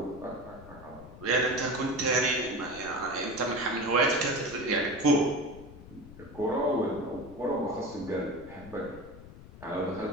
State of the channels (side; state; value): left; noise; rumble, 17 dB below the sound